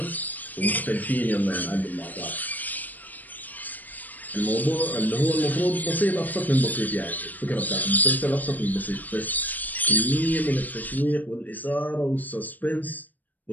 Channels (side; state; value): right; late; 0.084 ms